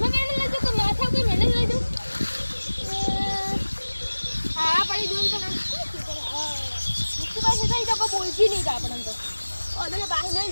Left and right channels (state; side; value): inverted; both; correlation -1.00